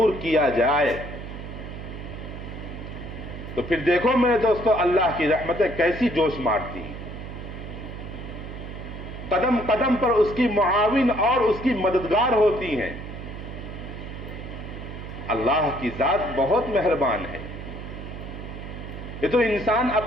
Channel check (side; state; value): right; noise; hum, 10 dB below the sound